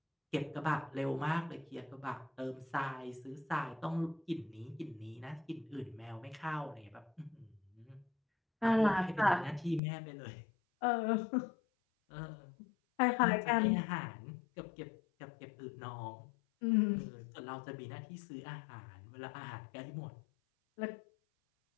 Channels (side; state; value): right; drops out; at 9.8 s